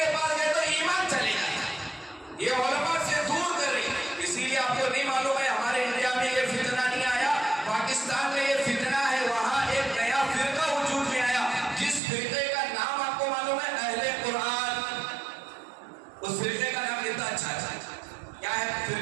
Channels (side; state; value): left; drops out; at 12.0 s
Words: پاس گئے تو ایمان چلے جاتا، یہ علماء سے دور کر رہی، اسی لیے آپ کو نہیں معلوم ہے ہمارے انڈیا میں یہ فتنہ نہیں آیا، پاکستان میں یہ فتنہ ہے، وہاں ایک نیا فرقہ وجود میں آیا، جس فرقے کا نام آپ کو معلوم ہے؟ اہل قرآن، اس فرقے کا نام کتنا اچھا ہے، کیا ہے